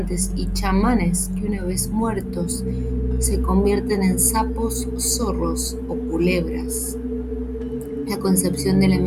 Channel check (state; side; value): identical; both; correlation 1.00